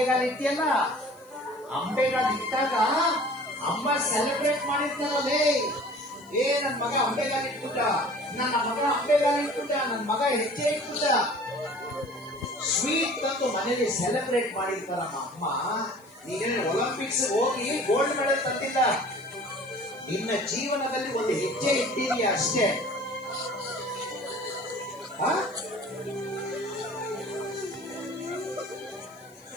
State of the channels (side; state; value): left; noise; hiss, 29 dB below the sound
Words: ಇಟ್ಟಿಯಲ್ಲ, ಅಂಬೆಗಾಲ ಇಟ್ಟಾಗ ಅಮ್ಮ ಸೆಲೆಬ್ರೇಟ್ ಮಾಡಿರ್ತಾರಲ್ಲೇ, ನನ್ ಮಗ ಅಂಬೆಗಾಲ ಇಟ್ಬಿಟ್ಟ, ನನ್ನ ಮಗ ಹೆಜ್ಜೆ ಇಟ್ಬಿಟ್ಟ, ಸ್ವೀಟ್ ತಂದು ಮನೇಲಿ ಸೆಲೆಬ್ರೇಟ್ ಮಾಡಿರ್ತಾರಮ್ಮ ಅಮ್ಮ. ನೀನೇನು ಒಲಿಂಪಿಕ್ಸ್ ಹೋಗಿ ಗೋಲ್ಡ್ ಮೆಡಲ್ ತಂದಿಲ್ಲ, ನಿನ್ನ ಜೀವನದಲ್ಲಿ ಒಂದು ಹೆಜ್ಜೆ ಇಟ್ಟಿದೀಯ ಅಷ್ಟೇ.